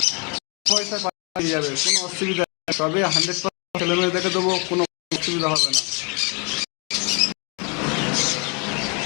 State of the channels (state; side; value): quieter; right; 33.6 dB